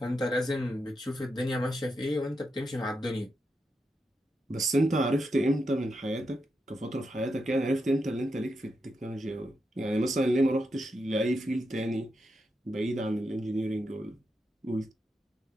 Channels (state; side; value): normal; both; correlation 0.85